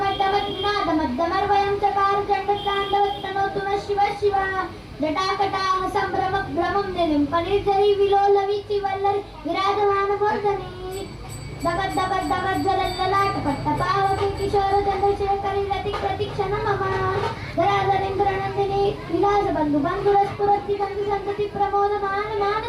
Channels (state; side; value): identical; both; correlation 1.00